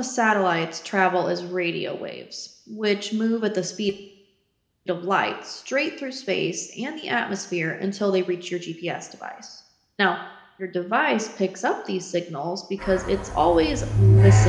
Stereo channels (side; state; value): both; identical; correlation 1.00